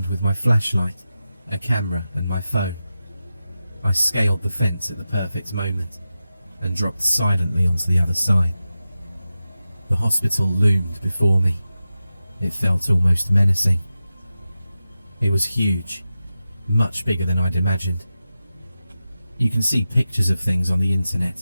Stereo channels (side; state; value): both; inverted; correlation -0.92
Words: with my flashlight, a camera and my phone, I scaled the fence at the perfect moment and dropped silently onto the other side. The hospital loomed before me. It felt almost menacing. It was huge, much bigger than I'd imagined. You can see pictures of things on the